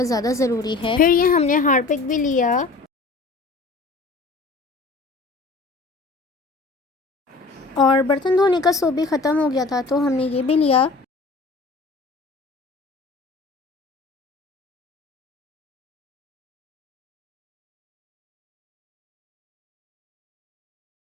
ज़्यादा ज़रूरी है। फिर ये हमने हार्पिक भी लिया। और बर्तन धोने का सोप भी ख़त्म हो गया था तो हमने ये भी लिया।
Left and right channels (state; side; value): quieter; right; 3.8 dB